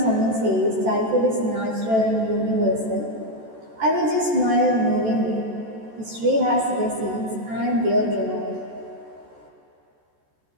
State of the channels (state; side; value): late; left; 14 ms